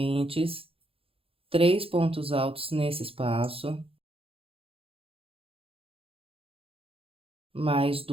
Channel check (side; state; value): left; late; 0.27 ms